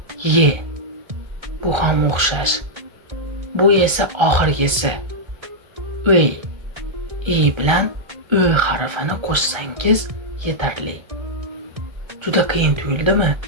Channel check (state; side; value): late; left; 1.3 ms